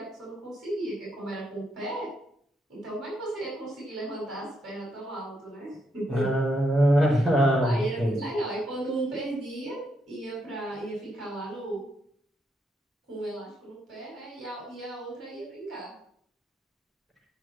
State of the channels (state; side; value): normal; both; correlation 0.78